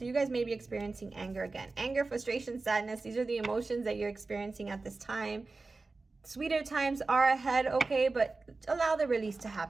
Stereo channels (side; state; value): left; quieter; 3.7 dB